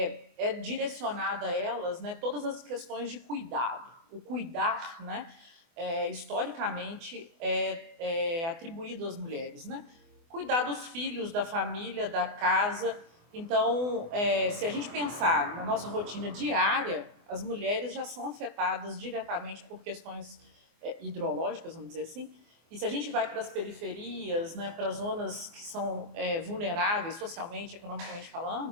direcionada a elas, né, todas as questões de cuidado. O cuidar, né, historicamente, é atribuído às mulheres, né? Cuidar dos filhos, da família, da casa. Então, se a gente pensar na nossa rotina diária, as mulheres já são afetadas diretamente por questões hidrológicas, vamos dizer assim. E se a gente vai para as periferias, né, para as zonas que são vulneráveis socialmente, economicamente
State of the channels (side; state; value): left; late; 24 ms